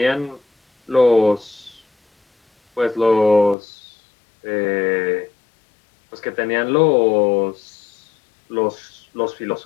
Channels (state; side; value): drops out; right; at 3.6 s